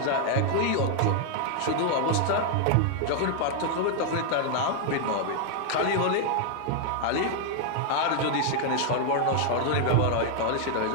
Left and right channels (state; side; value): different; both; correlation 0.00